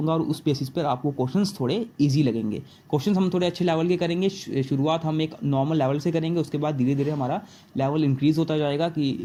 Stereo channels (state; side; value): identical; both; correlation 1.00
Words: और उस बेसिस पर आपको क्वेश्चंस थोड़े इजी लगेंगे। क्वेश्चंस हम थोड़े अच्छे लेवल के करेंगे। शुरुआत हम एक नॉर्मल लेवल से करेंगे, उसके बाद धीरे धीरे हमारा लेवल इंक्रीज होता जाएगा।